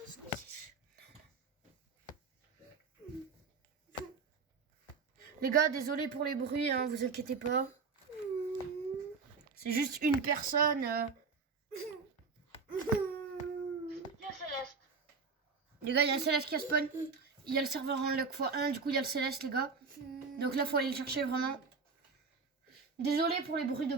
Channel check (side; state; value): left; quieter; 4.9 dB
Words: ce que c'est. Les gars, désolé pour les bruits, hein, vous inquiétez pas. C'est juste une personne. Il y a Céleste. Les gars, il y a un Céleste qui a spawn. Il y a le serveur en luck x1, du coup il y a le Céleste, les gars. Donc là, faut aller le chercher vraiment. Désolé pour les bruits de